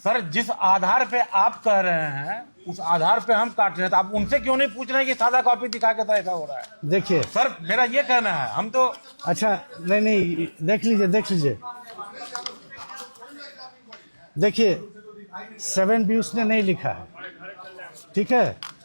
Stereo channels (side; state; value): both; inverted; correlation -1.00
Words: जिस आधार पे आप कह रहे हैं उस आधार पे हम काट रहे हैं, तो आप उनसे क्यों नहीं पूछ रहे हैं कि सादा कॉपी दिखा के तो ऐसा हो रहा है? देखिए सर, मेरा ये कहना है, हम तो अच्छा नहीं, देख लीजिए देखिए 7B उसने नहीं लिखा है, ठीक है,